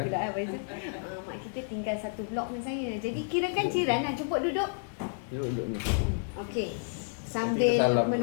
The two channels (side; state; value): right; silent; 57 dB below the other